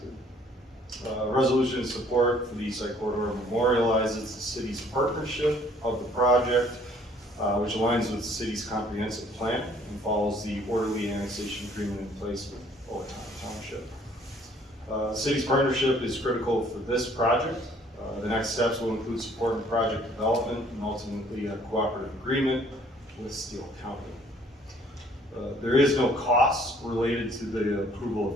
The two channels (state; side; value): normal; both; correlation 0.59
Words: Resolution of support for the East Side Corridor memorializes the city's partnership of the project, which aligns with the city's comprehensive plan and follows the orderly annexation agreement in place with Owatonna Township. The city's partnership is critical for this project. The next steps will include support in project development and ultimately a cooperative agreement with Steele County. There is no cost related to the approval